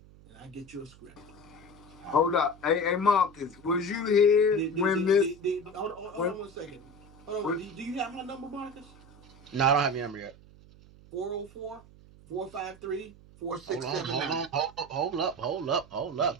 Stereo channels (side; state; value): right; noise; hum, 23 dB below the sound